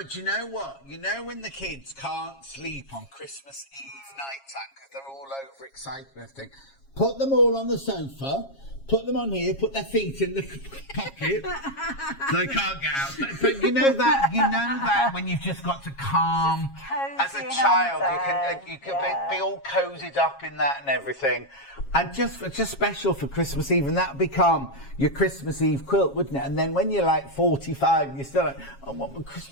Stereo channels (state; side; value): late; right; 7.3 ms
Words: you know what? You know when the kids can't sleep on Christmas Eve night time because they're all overexcited and everything, put them all on the sofa, put them on here, put their feet in the pocket so they can't get out. But you know that when you've just got to calm, as a child, you can be all cozied up in that and everything. And just special for Christmas Eve, and that would become your Christmas Eve quilt, wouldn't it? And then when you're like 45, you're still like, I want my